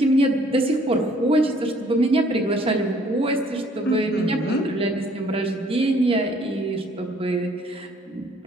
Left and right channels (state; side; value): normal; both; correlation 0.60